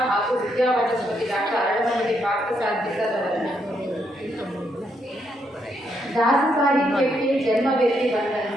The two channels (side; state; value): both; normal; correlation 0.77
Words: ಹಾಗೂ ವಿದ್ಯಾವಾಚಸ್ಪತಿ ಡಾಕ್ಟರ್ ಅರಳಮಲ್ಲಿ ಪಾರ್ಥಸಾರಥಿ ಅವರನ್ನು. ದಾಸ ಸಾಹಿತ್ಯಕ್ಕೆ ಜನ್ಮವೆತ್ತಿ